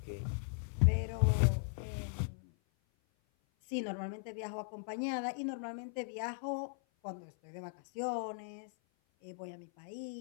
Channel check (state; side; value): silent; right; 52 dB below the other